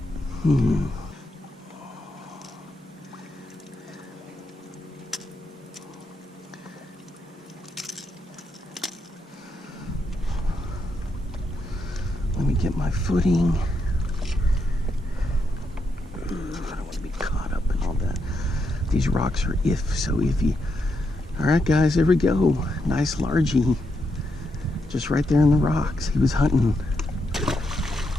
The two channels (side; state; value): both; normal; correlation 0.81